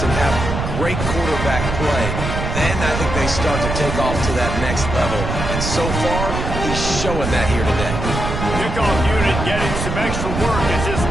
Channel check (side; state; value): right; noise; rumble, 4 dB below the sound